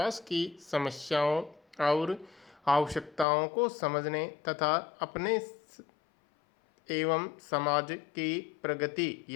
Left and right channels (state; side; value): drops out; right; at 3.2 s